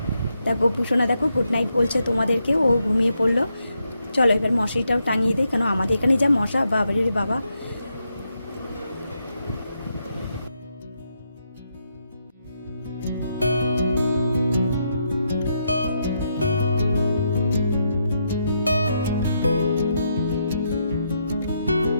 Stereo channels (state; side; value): inverted; both; correlation -0.80